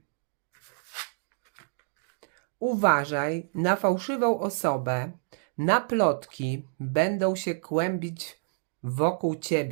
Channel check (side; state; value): left; silent; digital silence